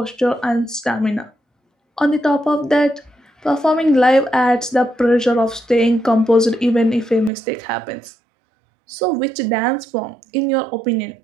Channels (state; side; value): drops out; left; at 7.3 s